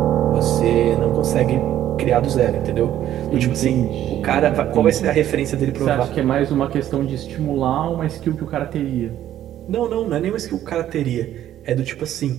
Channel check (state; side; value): quieter; left; 11.9 dB